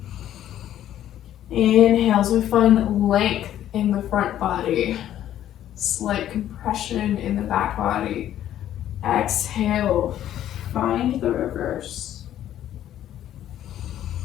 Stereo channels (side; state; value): right; quieter; 11.7 dB